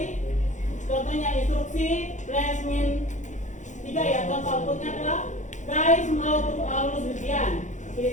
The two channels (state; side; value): late; right; 0.35 ms